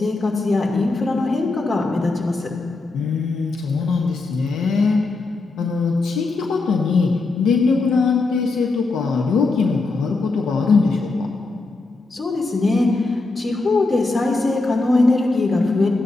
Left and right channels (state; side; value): quieter; right; 3.5 dB